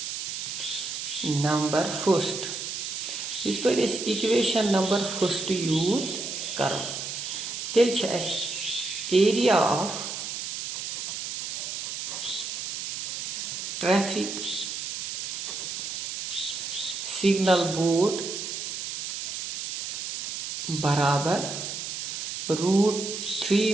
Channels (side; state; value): right; noise; hiss, 5 dB below the sound